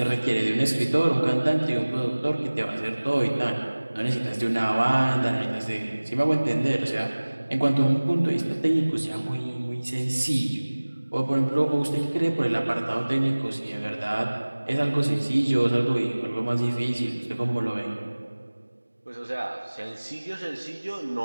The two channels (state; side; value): inverted; both; correlation -1.00